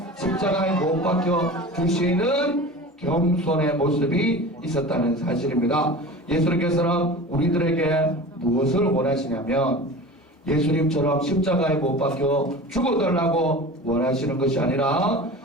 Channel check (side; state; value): both; normal; correlation 0.35